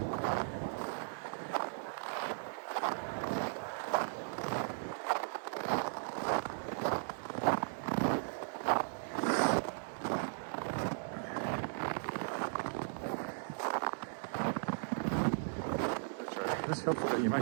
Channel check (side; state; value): left; silent; 53 dB below the other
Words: This helpful that you